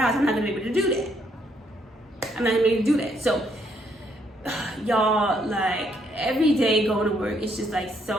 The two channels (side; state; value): both; normal; correlation 0.71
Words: I'm not gonna be able to do that. So, y'all, like, every day going to work, it's just like